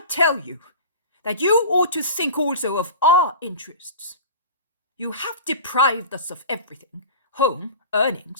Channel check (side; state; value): both; inverted; correlation -0.35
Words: tell you that you ought to think also of our interests. You have deprived us of everything: home,